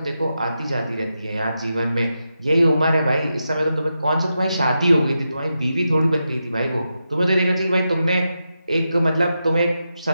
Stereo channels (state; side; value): inverted; both; correlation -0.88